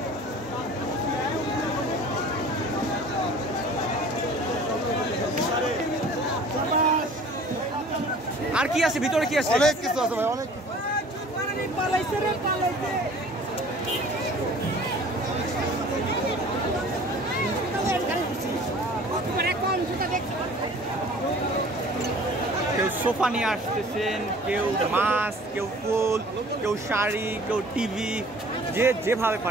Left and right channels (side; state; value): both; normal; correlation 0.48